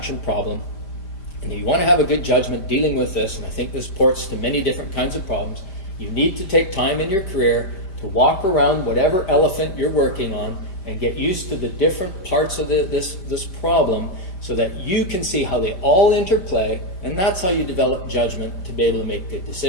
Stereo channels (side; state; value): right; late; 5.1 ms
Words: problem, and you want to have a good judgment dealing with this, and I think this ports to many different kinds of problems, you need to take time in your career to walk around whatever elephant you're working on and get used to the different parts of this problem so that you can see how they all interplay, and that's how you develop judgment to be able to make good